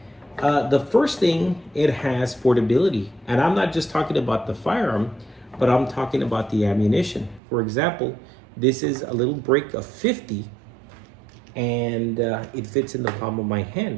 The first thing, it has portability. And I'm not just talking about the firearm, but I'm talking about the ammunition. For example, this is a little break of 50, and it fits in the palm of my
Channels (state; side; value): drops out; left; at 7.4 s